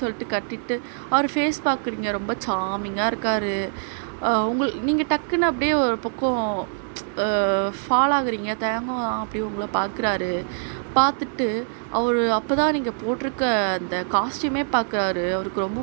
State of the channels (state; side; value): silent; left; digital silence